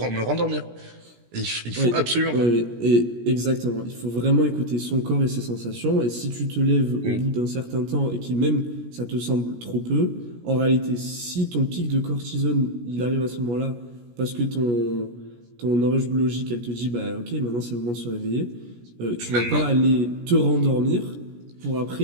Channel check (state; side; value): late; left; 17 ms